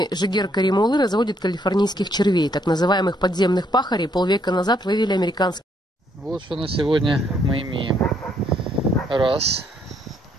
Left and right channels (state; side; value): normal; both; correlation 0.70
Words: Жигер Каримулы разводит калифорнийских червей, так называемых подземных пахарей. Полвека назад вывели американские. Вот что на сегодня мы имеем. Раз.